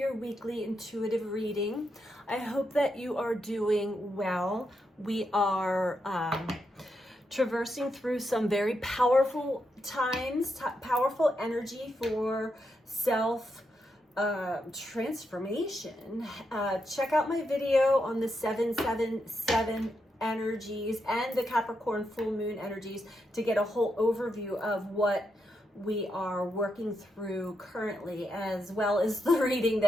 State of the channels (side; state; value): both; normal; correlation 0.83